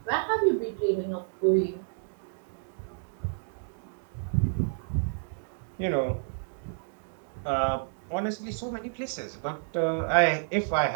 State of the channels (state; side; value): silent; left; digital silence